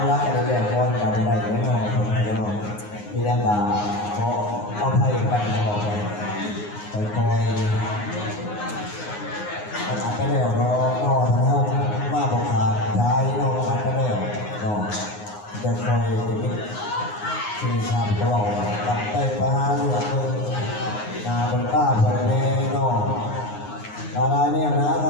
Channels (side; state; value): right; late; 9.6 ms